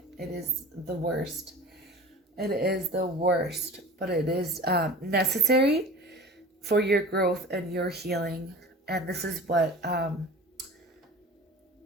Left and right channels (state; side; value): normal; both; correlation 0.39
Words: It is the worst. It is the worst. But it is necessary for your growth and your healing. And this is what